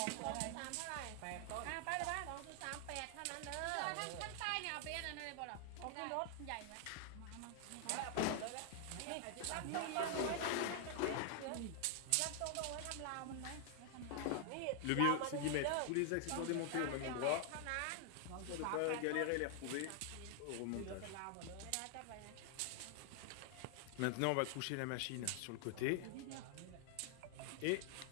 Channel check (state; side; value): different; both; correlation 0.00